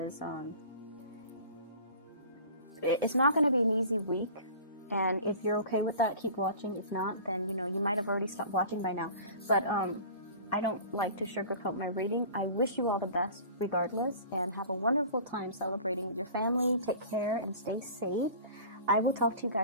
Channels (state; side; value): inverted; both; correlation -0.41